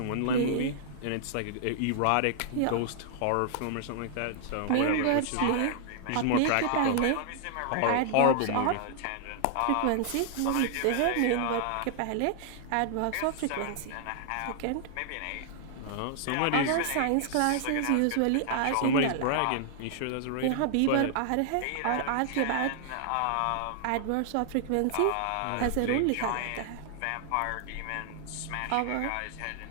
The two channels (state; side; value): different; both; correlation -0.01